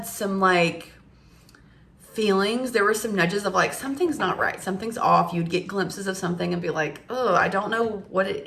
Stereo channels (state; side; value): identical; both; correlation 1.00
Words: some like feelings, there were some nudges of like, something's not right, something's off. You'd get glimpses of something and be like, oh, I don't know what it